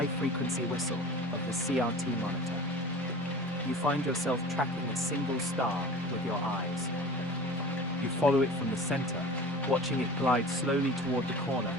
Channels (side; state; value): both; normal; correlation 0.38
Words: whistle of the CRT monitor. You find yourself tracking a single star with your eyes. You follow it from the center, watching it glide slowly toward the corner